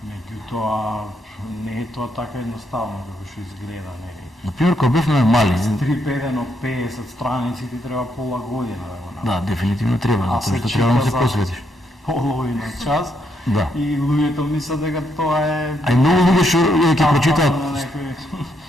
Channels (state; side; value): normal; both; correlation 0.76